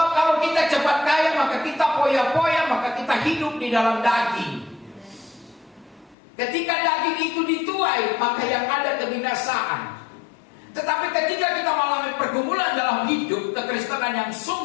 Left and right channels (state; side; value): drops out; right; at 6.2 s